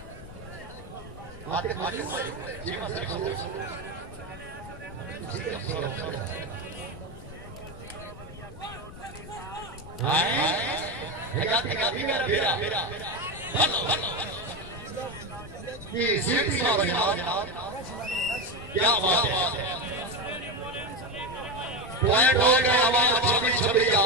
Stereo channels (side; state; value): left; noise; rumble, 14 dB below the sound